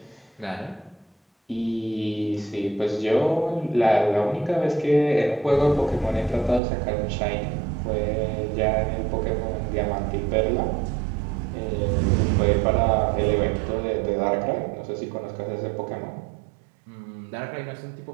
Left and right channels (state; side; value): drops out; left; at 6.6 s